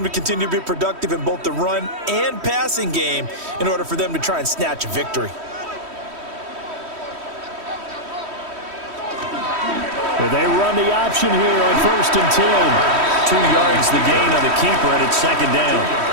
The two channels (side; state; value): left; late; 3.1 ms